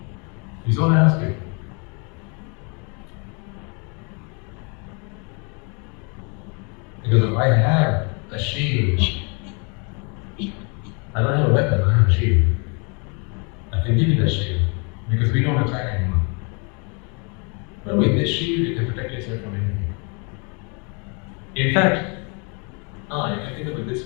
Is all I ask you. Because if I have a shield, I don't have a weapon, I have a shield. I can give you that shield because we don't attack anyone. But with this shield, you can protect yourself from anything. In fact, you can think of it this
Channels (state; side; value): quieter; right; 34.7 dB